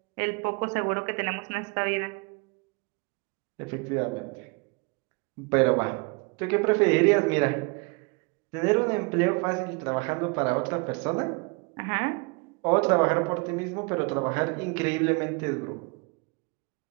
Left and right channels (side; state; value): left; quieter; 30.9 dB